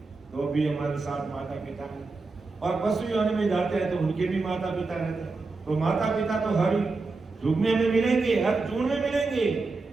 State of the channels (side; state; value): left; quieter; 3.8 dB